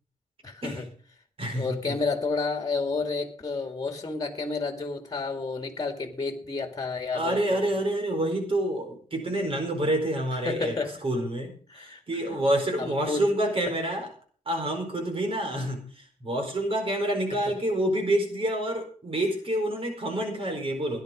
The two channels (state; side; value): normal; both; correlation 0.64